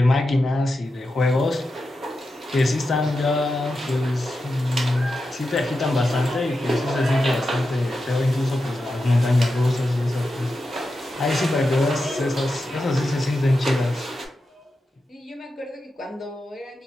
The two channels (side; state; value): both; normal; correlation 0.90